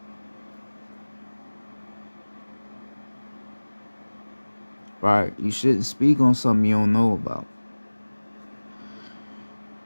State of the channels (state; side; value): inverted; both; correlation -1.00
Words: Right? You shouldn't speak on something you don't know about.